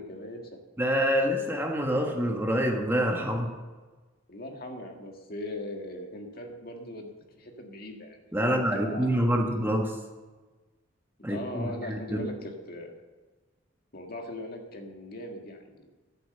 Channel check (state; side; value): normal; both; correlation 0.64